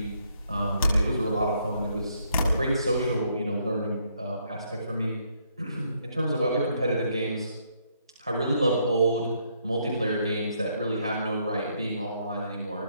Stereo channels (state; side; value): inverted; both; correlation -0.72